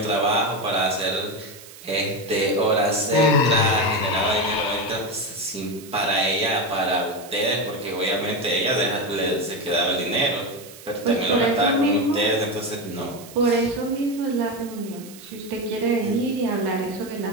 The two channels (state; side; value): noise; right; hiss, 18 dB below the sound